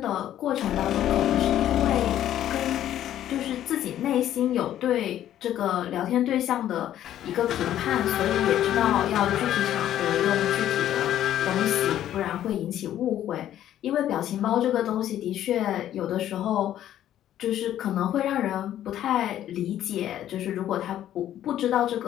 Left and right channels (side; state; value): right; quieter; 11.8 dB